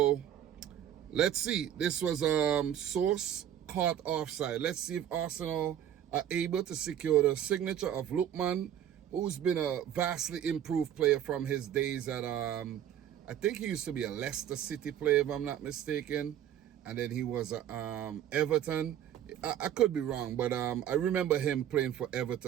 let's see. This was source caught offside. Let's see if Arsenal are able to secure the signature of Lookman, who's been a vastly improved player from his days at I think he used to be a Leicester City player, if I'm not mistaken, and then he was at Everton. I could be wrong, but I remember him playing for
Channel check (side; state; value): left; quieter; 10.5 dB